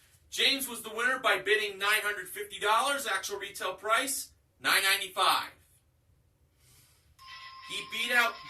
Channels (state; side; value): identical; both; correlation 1.00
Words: James was the winner by bidding $950. Actual retail price, $995. He beat out